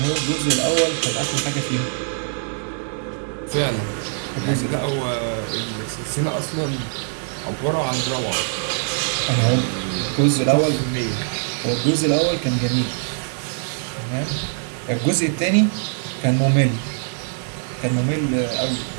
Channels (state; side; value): silent; left; 64 dB below the other